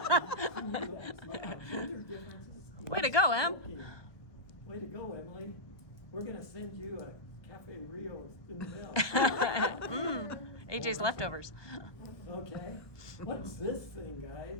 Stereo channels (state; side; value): late; right; 1.0 ms